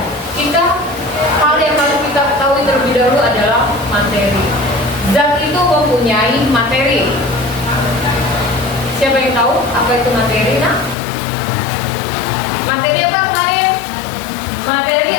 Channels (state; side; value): drops out; right; at 11.0 s